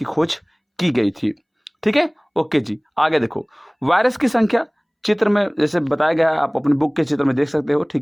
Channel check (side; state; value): both; identical; correlation 1.00